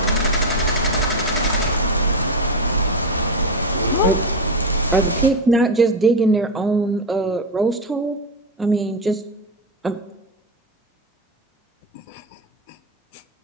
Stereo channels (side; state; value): both; normal; correlation 0.11